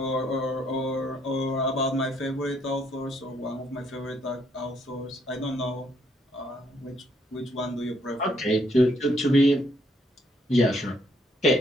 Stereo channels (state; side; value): normal; both; correlation 0.70